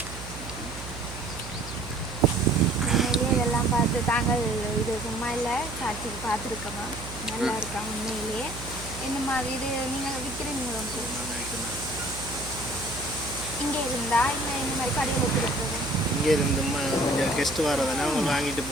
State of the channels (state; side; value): noise; right; hum, 11 dB below the sound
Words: பார்த்து தாங்கள் இது சும்மா இல்லை காட்சிக்கு பார்த்துருக்கோமா நல்லா இருக்கா உண்மையிலேயே. இந்த மாதிரி இது நீங்கள் விற்கிறீங்களோ இங்கே இருந்தா இல்லை இந்த மாதிரி கடையில் கொடுக்குறது? இங்கே இருந்து கொஞ்சம் கெஸ்ட்டு வரதானே அவங்க வாங்கிட்டு